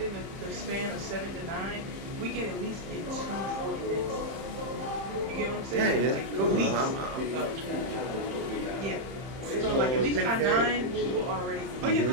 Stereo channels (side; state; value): left; late; 31 ms